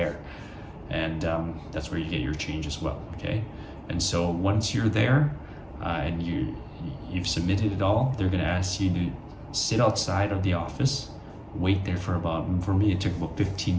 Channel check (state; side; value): identical; both; correlation 1.00